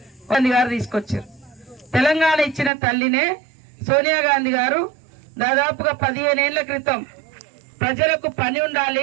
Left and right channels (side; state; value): left; drops out; at 2.7 s